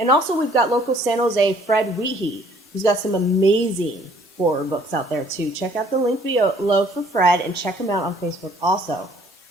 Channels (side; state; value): both; normal; correlation 0.59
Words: also we've got local San Jose Fred Weehee, who's got some amazing horror books out there too. Check out the link below for Fred and check him out on Facebook also.